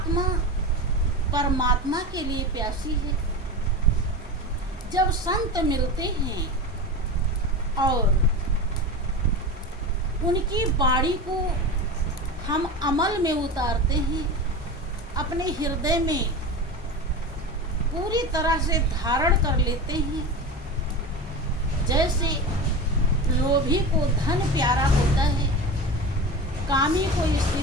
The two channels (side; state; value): both; normal; correlation 0.27